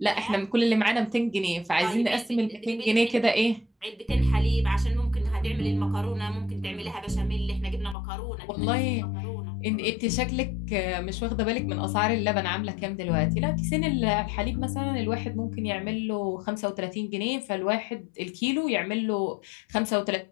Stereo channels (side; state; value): right; drops out; at 8.0 s